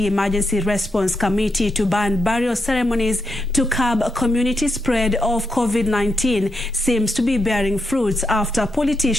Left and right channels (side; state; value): both; normal; correlation 0.83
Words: Emergency Response Committee to ban burial ceremonies to curb community spread of COVID-19 seems to be bearing fruits after